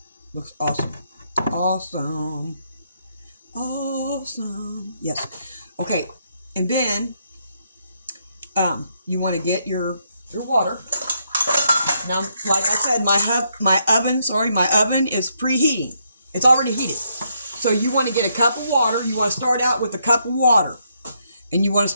Looks awesome. Awesome. Awesome. Yes. Okay. And then you want to get your water. Now, like I said, my oven is preheating. It's already heated. So you want to get a cup of water. You want to start out with a cup of water. And you want to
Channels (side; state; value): both; inverted; correlation -0.76